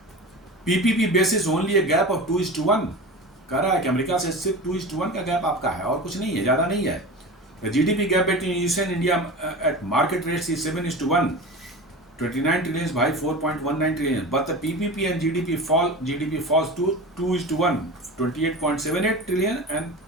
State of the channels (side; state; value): both; normal; correlation 0.31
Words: PPP basis only a gap of 2:1 कह रहा है कि अमेरिका से सिर्फ 2:1 का गैप आपका है और कुछ नहीं है, ज्यादा नहीं है। GDP gap between US and India at market rates is 7:1, 29 trillion by 4.19 trillion, but the PPP and GDP falls to 2:1, 28.78 trillion and